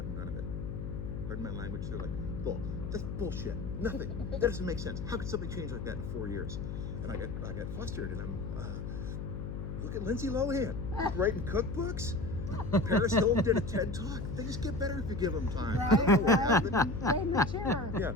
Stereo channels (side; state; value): left; noise; hum, 5 dB below the sound